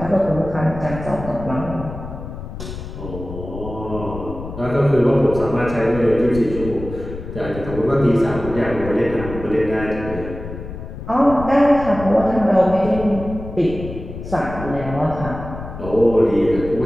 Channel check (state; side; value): noise; left; rumble, 10 dB below the sound